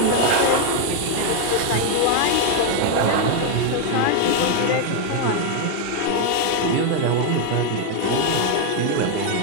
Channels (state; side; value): different; both; correlation 0.01